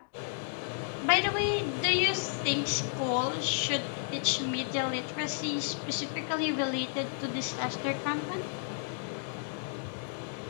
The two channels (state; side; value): silent; right; digital silence